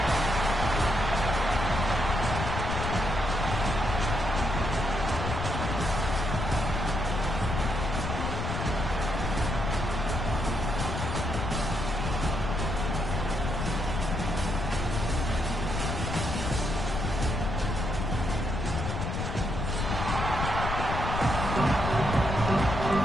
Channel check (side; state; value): left; noise; rumble, 2 dB below the sound